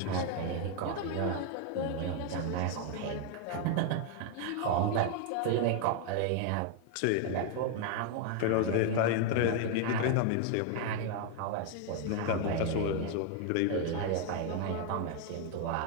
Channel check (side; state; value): both; different; correlation 0.01